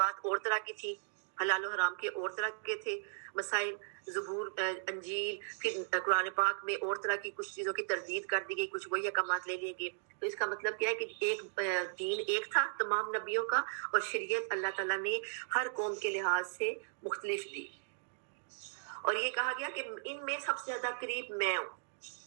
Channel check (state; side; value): silent; left; digital silence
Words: اور طرح کی تھی، حلال و حرام کے اور طرح کے تھے مسائل، زبور انجیل، پھر قرآن پاک میں اور طرح کی کچھ چیزوں کی تردید کر دی گئی، کچھ وہی احکامات لے لیے گئے. تو اس کا مطلب کیا ہے کہ ایک دین ایک تھا تمام نبیوں کا، اور شریعت اللہ تعالیٰ نے ہر قوم کے لحاظ سے مختلف دی. اور یہ کہا گیا کہ ان میں سب سے زیادہ قریب میں ہوں،